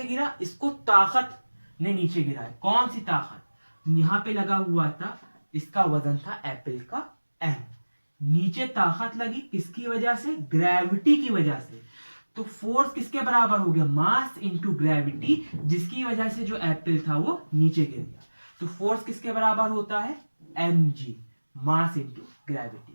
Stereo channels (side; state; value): both; inverted; correlation -1.00